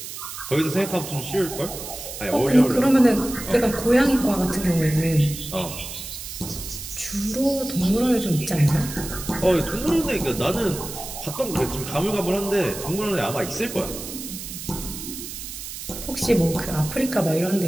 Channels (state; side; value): noise; right; hiss, 9 dB below the sound